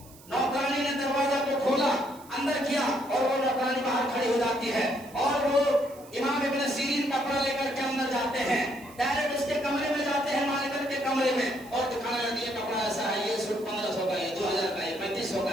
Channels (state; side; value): noise; right; hiss, 22 dB below the sound